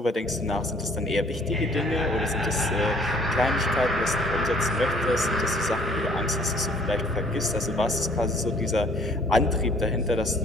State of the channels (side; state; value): both; normal; correlation 0.58